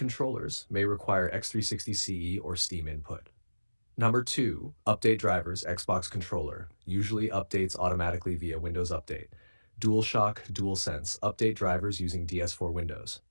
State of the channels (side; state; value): both; inverted; correlation -1.00